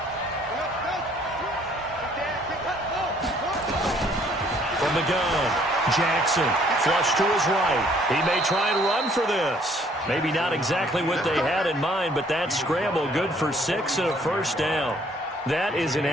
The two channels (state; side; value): normal; both; correlation 0.62